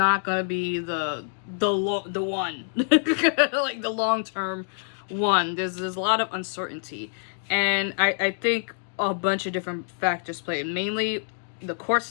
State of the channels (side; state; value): right; silent; digital silence